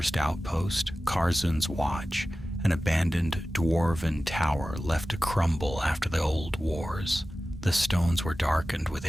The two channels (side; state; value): both; normal; correlation 0.95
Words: outpost, Karzun's Watch, an abandoned dwarven tower left to crumble after the old wars. The stones were darkened with